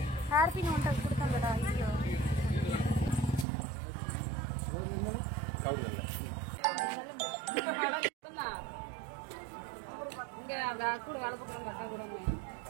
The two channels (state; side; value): drops out; left; at 3.5 s